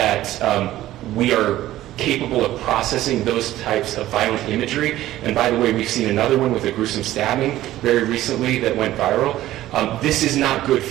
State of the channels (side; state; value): left; quieter; 14.6 dB